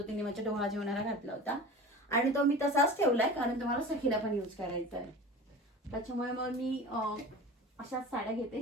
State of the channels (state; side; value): normal; both; correlation 0.35